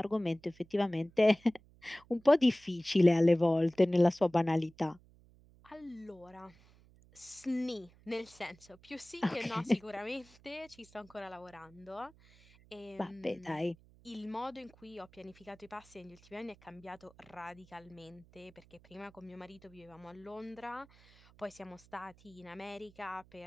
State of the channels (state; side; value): noise; right; hum, 26 dB below the sound